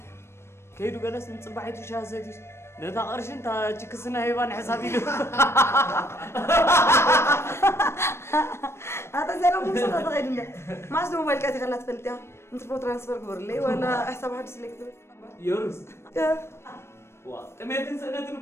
كيدو جلس نصبحيتو شاه سيتي نتا قرشين تا تشيكسنا هيبان حسابي له هذا زين مو صدق غير ما أصله موبايل كاتي خلات فلتها أنت بو ترانسفر قبر لي ولا حساب حد سلكتو يورس كمية سنة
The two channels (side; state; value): right; late; 0.12 ms